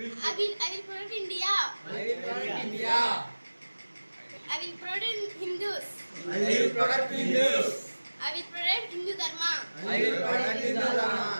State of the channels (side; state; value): both; inverted; correlation -1.00